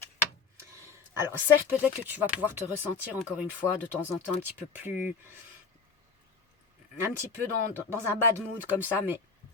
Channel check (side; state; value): right; quieter; 5.2 dB